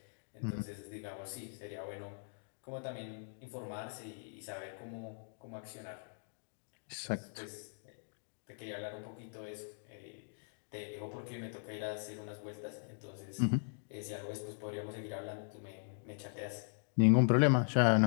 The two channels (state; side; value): silent; right; digital silence